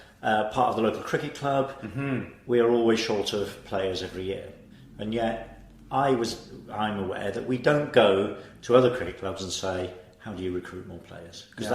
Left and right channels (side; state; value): both; identical; correlation 1.00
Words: part of the local cricket club. Mm-hmm. We are always short of players every year, and yet I'm aware that we don't go to other cricket clubs and say, how do you recruit more players? Because